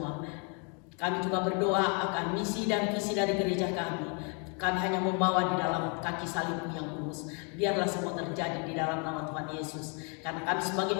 Kami juga berdoa akan misi dan visi dari gereja kami. Kami hanya membawa di dalam kaki salib-Mu yang kudus. Biarlah semua terjadi di dalam nama Tuhan Yesus. Karena kami sebagai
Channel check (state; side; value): quieter; right; 37.0 dB